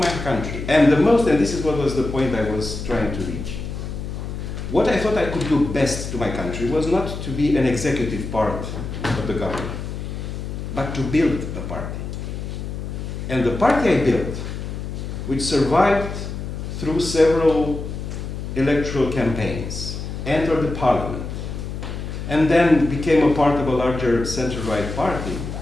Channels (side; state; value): left; noise; hum, 6 dB below the sound